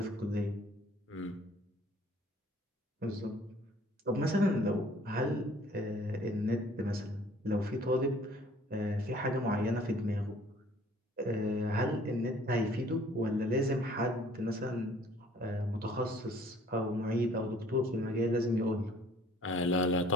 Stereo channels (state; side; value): normal; both; correlation 0.55